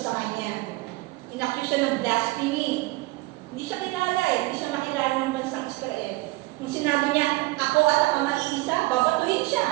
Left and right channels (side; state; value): left; quieter; 21.6 dB